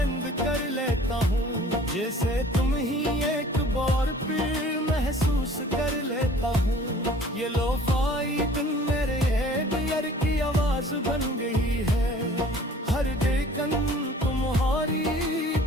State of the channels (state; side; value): normal; both; correlation 0.50